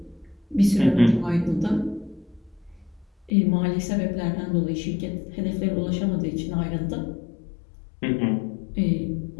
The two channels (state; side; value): drops out; right; at 3.3 s